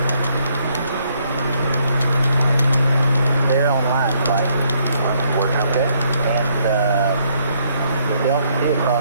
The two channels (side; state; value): both; inverted; correlation -0.70